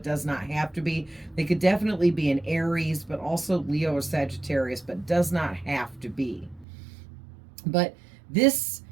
does not have to be. They could definitely be an Aries, but also Leo or Sagittarius, but does not have to be. But this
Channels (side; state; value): left; drops out; at 6.7 s